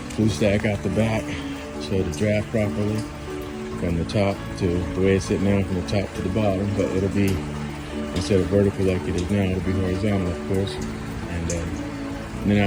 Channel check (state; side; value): identical; both; correlation 1.00